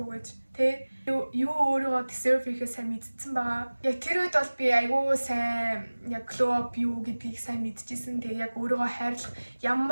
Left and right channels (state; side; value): inverted; both; correlation -1.00